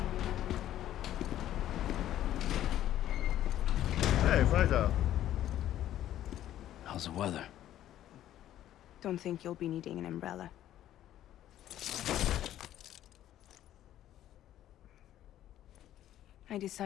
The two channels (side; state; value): right; quieter; 12.4 dB